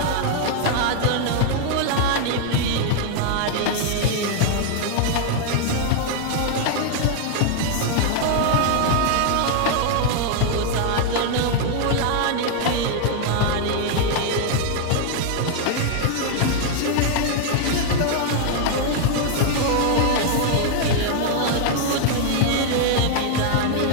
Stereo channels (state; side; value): different; both; correlation 0.00